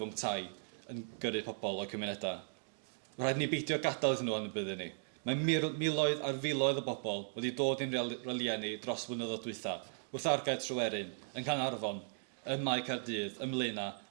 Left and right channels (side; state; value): left; silent; digital silence